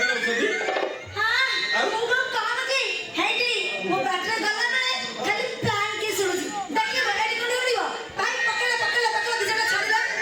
छथि हां मु काम की हेटी मो बैटरी गला माने खाली प्लान की सुनुची देखि बड़ी कोडी उड़िबो भाई पकड़ दिजटा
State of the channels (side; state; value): both; identical; correlation 1.00